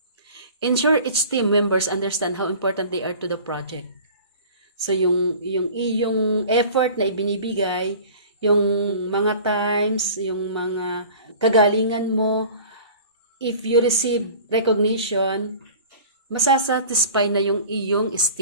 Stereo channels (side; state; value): both; inverted; correlation -0.43